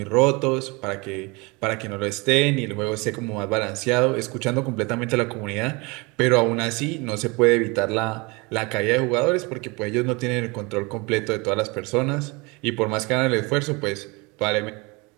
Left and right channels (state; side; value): quieter; left; 26.8 dB